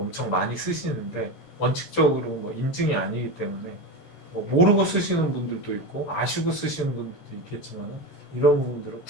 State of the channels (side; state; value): right; late; 14 ms